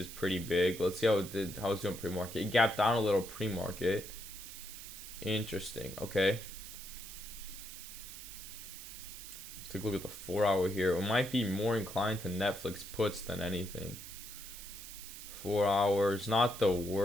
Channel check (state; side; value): noise; right; hiss, 12 dB below the sound